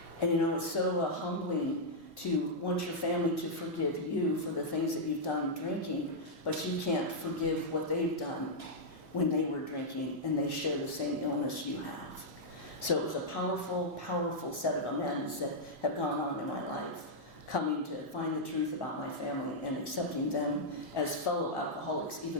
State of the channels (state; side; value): late; right; 1.6 ms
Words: And, it's so humbling to want your family to forgive you for the things that you've done drinking, but you can't forgive what they've done when they were drinking and they share the same illness you have. So it was a powerful, powerful set of amends that have gone on in my life, coming to find the truth about my family and accepting them as fellow alcoholics,